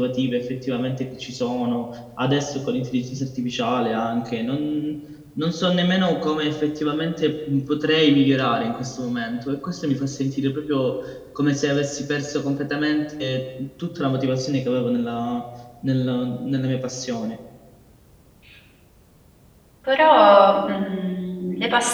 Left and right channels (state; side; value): identical; both; correlation 1.00